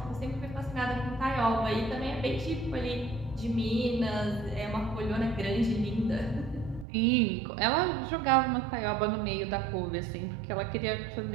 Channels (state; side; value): drops out; left; at 6.9 s